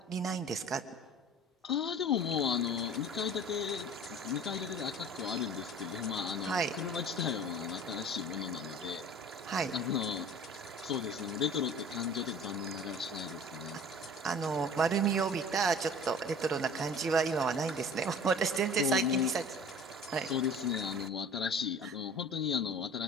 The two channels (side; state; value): both; normal; correlation 0.44